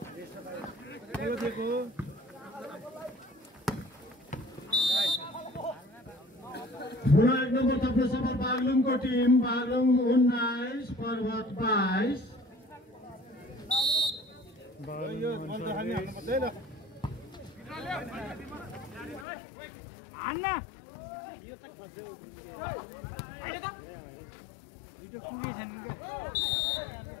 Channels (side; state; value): right; drops out; at 19.2 s